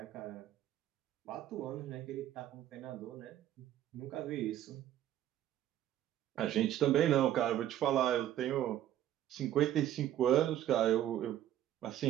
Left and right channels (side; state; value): left; quieter; 12.0 dB